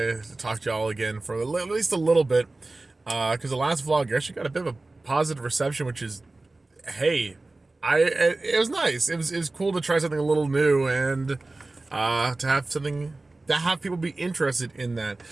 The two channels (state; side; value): quieter; left; 3.1 dB